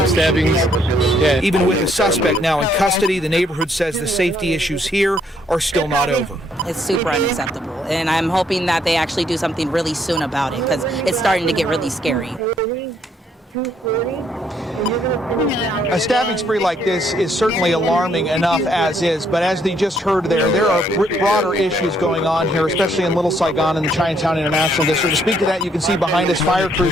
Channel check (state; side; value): normal; both; correlation 0.69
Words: stabbings. Yeah. Even with the suspect now in custody, the neighborhood says the safety issues here are still not over. It's super unacceptable, and I'm hoping that they actually do something really soon about it, because it's starting to get really scary. A stabbing spree like this is certainly alarming enough as is, but as they just heard there are broader issues going on here, especially in Little Saigon and the Chinatown International District. To speak to that, you can see behind us fire